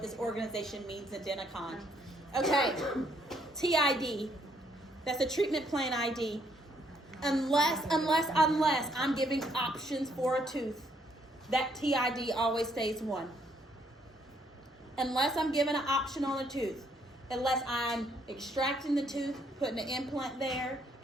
this organization means in Denticon. Okay, TID. That's a treatment plan ID. Unless I'm giving options for a tooth, that TID always stays 1. Unless I'm giving an option on a tooth, unless I'm extracting the tooth, putting an implant there,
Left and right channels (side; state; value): both; normal; correlation 0.70